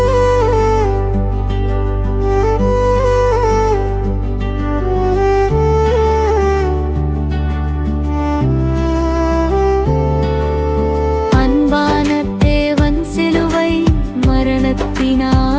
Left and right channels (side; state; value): both; identical; correlation 1.00